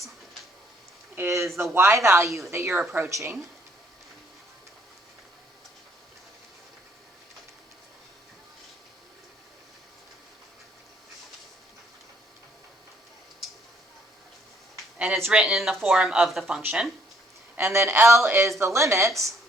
is the y value that you're approaching. and it's written in the form of the function. And then L is the limit,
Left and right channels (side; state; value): both; normal; correlation 0.66